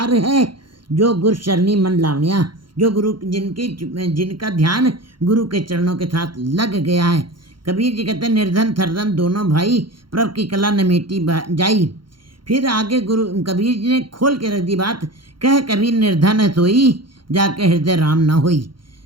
है। जो गुरु शरणी मन लावण्या, जो गुरु जिनका ध्यान गुरु के चरणों के साथ लग गया है। कबीर जी कहते हैं, निर्धन थरधन दोनों भाई, प्रभ की कला न मेटी जाई। फिर आगे गुरु कबीर जी ने खोल के रख दी बात, कह कबीर निर्धन है सोई, जाके हृदय राम न होई।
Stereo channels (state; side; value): late; left; 0.73 ms